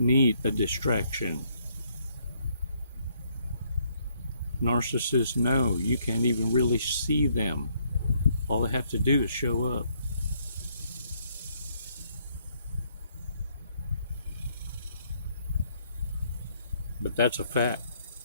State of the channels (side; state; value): both; inverted; correlation -0.70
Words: need a distraction. Narcissists know you can't even really see them. All they have to do is show up. But that's a fact.